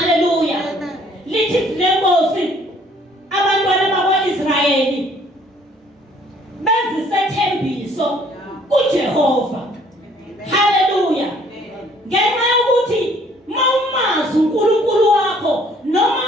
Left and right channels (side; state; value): both; normal; correlation 0.60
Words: Amen. Lithi izwi lenkosi, abantwana bakwa-Israyeli benza isethembiso kuJehova. Hallelujah. Ngenxa yokuthi mawumazi uNkulunkulu wakho noma